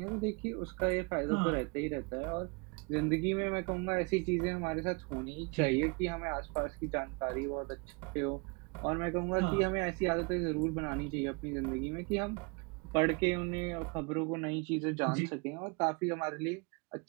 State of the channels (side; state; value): left; quieter; 30.9 dB